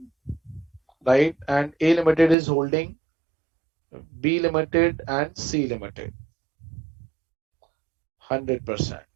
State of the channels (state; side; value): drops out; left; at 2.4 s